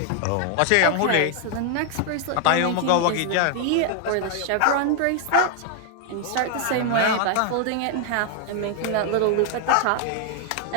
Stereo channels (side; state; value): both; different; correlation 0.00